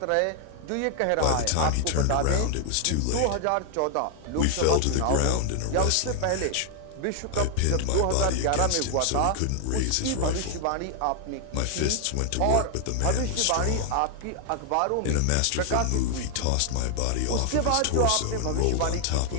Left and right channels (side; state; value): both; different; correlation 0.00